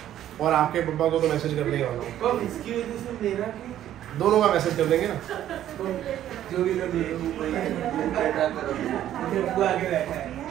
और आपके पापा को तो मैसेज करने ही वाला हूँ। इसकी वजह से मेरा दोनों का मैसेज कर देंगे ना। जो भी कर आगे रहता है।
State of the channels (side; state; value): left; quieter; 11.8 dB